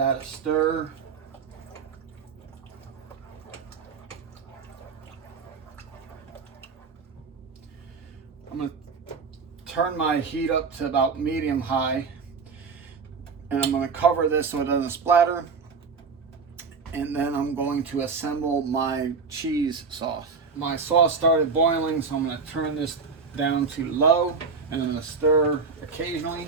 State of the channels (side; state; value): left; quieter; 5.0 dB